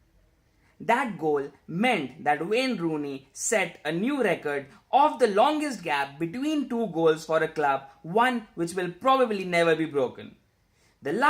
That goal meant that Wayne Rooney set a new record of the longest gap between two goals for a club, one which will probably never be broken. The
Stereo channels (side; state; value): both; identical; correlation 1.00